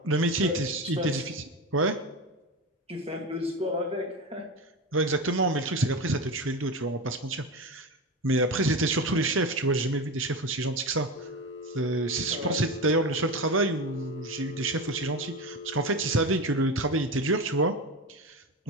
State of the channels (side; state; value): both; normal; correlation 0.22